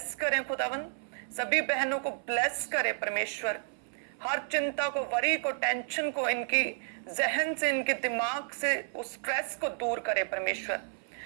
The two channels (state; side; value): silent; left; 57 dB below the other